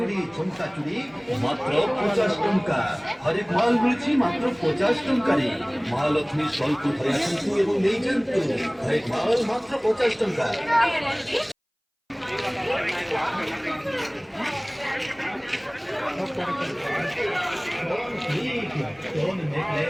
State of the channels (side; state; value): both; identical; correlation 1.00